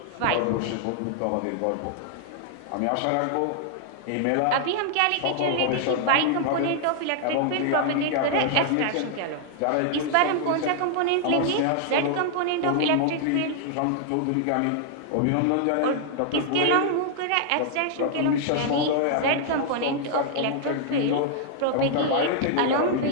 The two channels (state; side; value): different; both; correlation 0.00